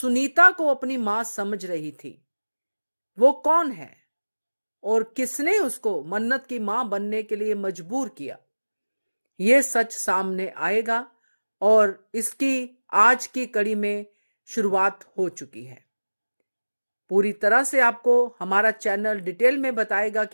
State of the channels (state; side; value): inverted; both; correlation -1.00